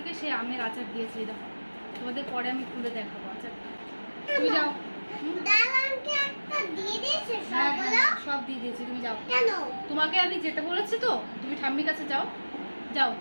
সেই আমের আচার দিয়েছি, দেখো তোমাদের পরে আমি খুলে দেখাবো আচারটা। তুমি যাও, হ্যাঁ সব দিয়ে দিয়েছি, তুমি যাও। তোমাকে আমি যেতে বলেছি তো, তুমি ঠাম্মির কাছে যাও, যাও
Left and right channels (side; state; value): both; inverted; correlation -1.00